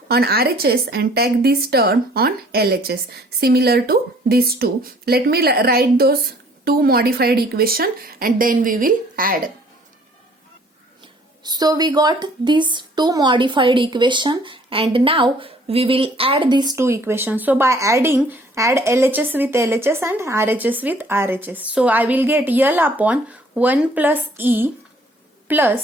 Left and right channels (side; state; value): both; normal; correlation 0.58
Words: on RHS and take this term on LHS, similar to these two. Let me write those two modified equation and then we will add. So we got these two modified equation, and now we will add these two equations. So by adding, add LHS with LHS and RHS with RHS. So I will get L upon 1 plus E